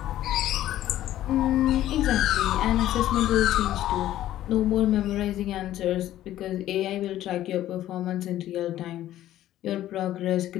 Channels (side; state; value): right; quieter; 13.3 dB